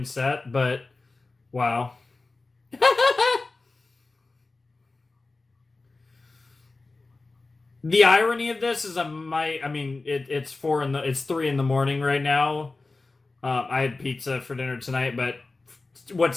but wow. The irony of this is it's 3 in the morning right now. I had pizza for dinner tonight, but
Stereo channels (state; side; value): quieter; right; 3.5 dB